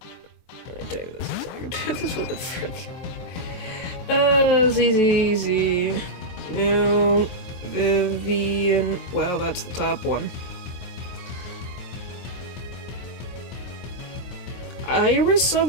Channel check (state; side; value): late; right; 23 ms